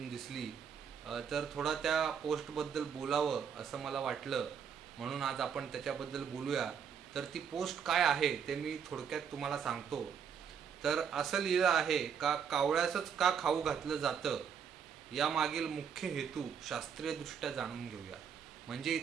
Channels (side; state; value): left; quieter; 7.4 dB